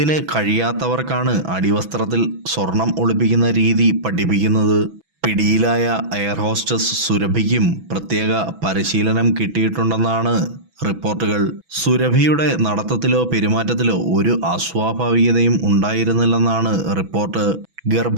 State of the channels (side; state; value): left; late; 6.1 ms